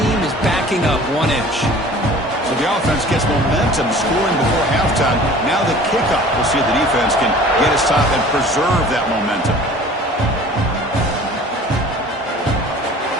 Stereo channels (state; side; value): normal; both; correlation 0.46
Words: is backing up 1 inch. So the offense gets momentum, scoring before halftime. Now the kickoff. We'll see if the defense can get a stop and preserve that momentum.